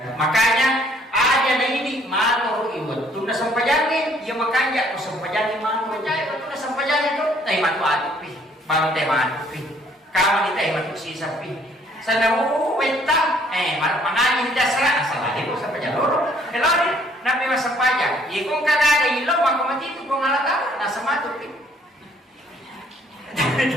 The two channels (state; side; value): normal; both; correlation 0.62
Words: ada na ini mato iwat tu na sampajangin ya makanya ko sampajangin mato jay tu na sampajangin tu tay matu pi baru tay matu pi kawan tay matu sisa pi sana wenta mangani dasra asal ko sampajang loro elori nabi masampajang ye kung kadaga ilo makamati tu kung alata nasa matu pi